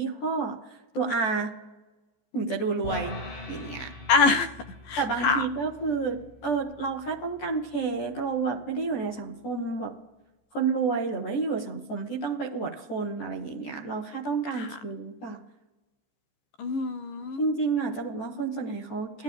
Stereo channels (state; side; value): late; right; 15 ms